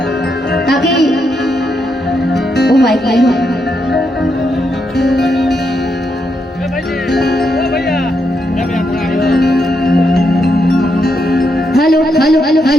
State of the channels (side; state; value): both; normal; correlation 0.81